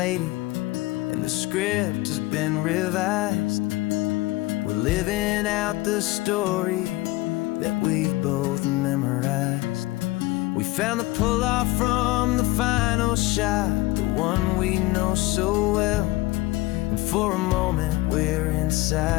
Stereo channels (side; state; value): right; quieter; 19.6 dB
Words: and the script has been revised. We're living out the story that we've both memorized. We found the pull-off from the final shot, the one we know so well. And for a moment we're